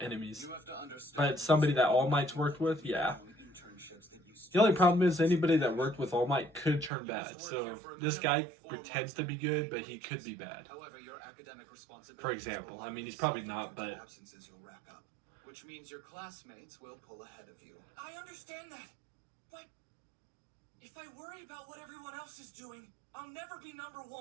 You have to understand But somebody that All Might's worked with, yeah. internships that you The only problem is anybody that worked with All Might could turn bad. So this guy pretends to be good, but he could be bad. However, your academic responsibilities For example, I mean, he's probably not, but absences will rack up, which means your classmates will pull ahead of you. I understand that, but if I worry about what everyone else is doing, I'll never be number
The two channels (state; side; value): drops out; left; at 6.9 s